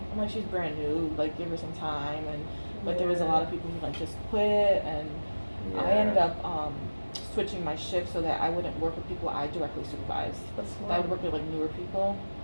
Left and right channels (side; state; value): both; inverted; correlation -1.00